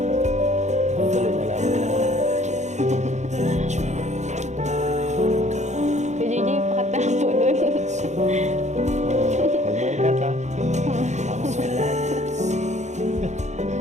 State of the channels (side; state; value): left; late; 0.34 ms